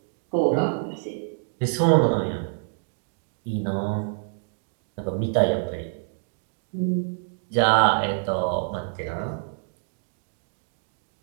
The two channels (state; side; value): silent; left; digital silence